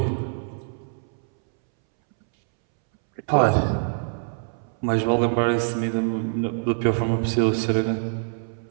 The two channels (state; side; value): silent; left; 62 dB below the other